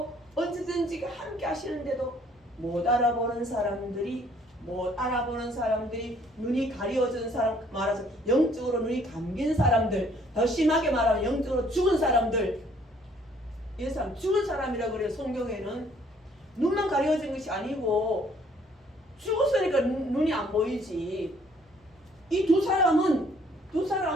언제든지 함께 하시는데도 못 알아보는 사람들이 눈이 가리워진 사람 말하자면 영적으로 눈이 감긴 사람들 더 심하게 말하면 영적으로 죽은 사람들 이 사람 죽은 사람이라고 그래요. 성경에는 눈만 가리워진 것이 아니고 죽었으니까 눈이 안 보이지. 이 두 사람은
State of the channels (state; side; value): normal; both; correlation 0.62